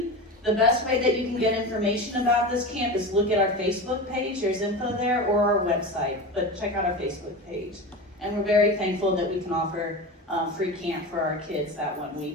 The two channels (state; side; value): normal; both; correlation 0.26